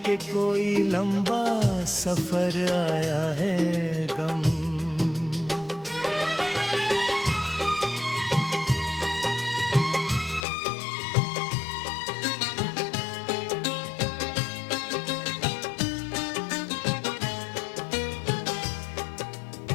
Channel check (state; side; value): drops out; right; at 10.5 s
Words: के कोई लंबा सफर आया है गम।